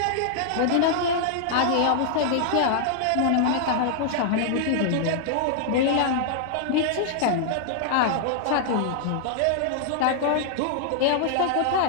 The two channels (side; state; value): both; different; correlation -0.01